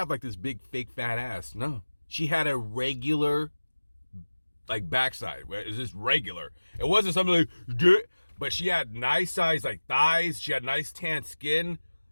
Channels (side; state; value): both; inverted; correlation -1.00